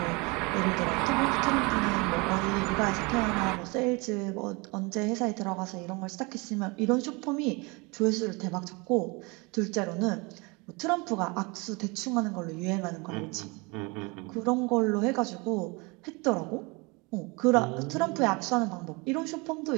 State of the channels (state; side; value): quieter; left; 27.7 dB